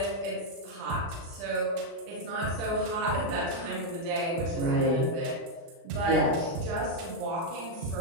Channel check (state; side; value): late; left; 36 ms